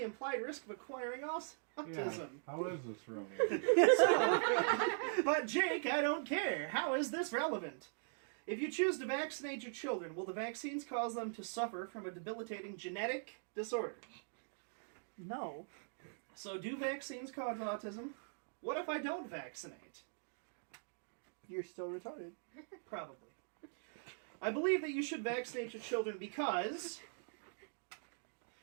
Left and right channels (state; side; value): silent; left; digital silence